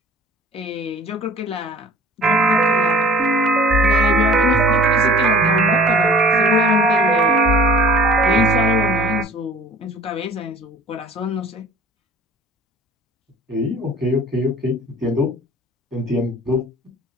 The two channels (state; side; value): normal; both; correlation 0.47